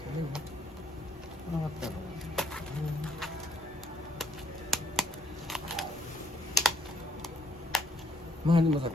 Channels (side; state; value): both; normal; correlation 0.66